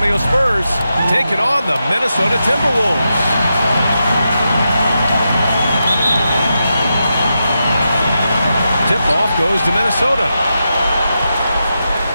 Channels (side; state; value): both; inverted; correlation -0.87